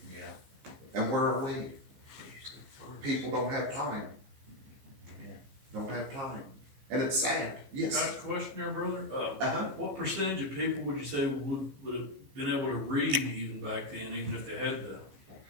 Yeah. And where are we? People don't have time. Don't have time. And it's sad, yes. Ask a question there, brother. Uh-huh. What percentage of people would you say would have been able to read even back then, even if they had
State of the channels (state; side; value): late; left; 15 ms